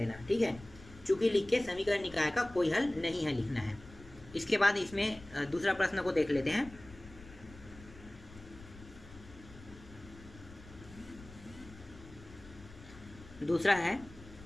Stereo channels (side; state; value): left; noise; rumble, 19 dB below the sound